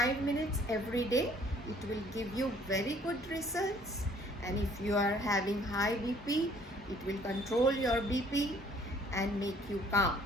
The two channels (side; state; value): both; normal; correlation 0.58